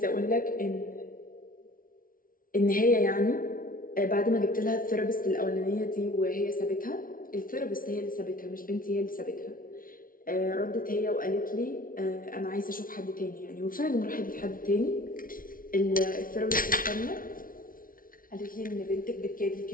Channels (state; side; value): late; right; 0.41 ms